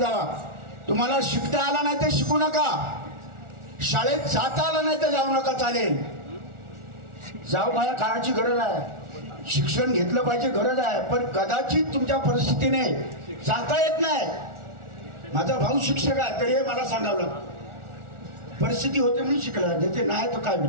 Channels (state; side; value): late; left; 1.4 ms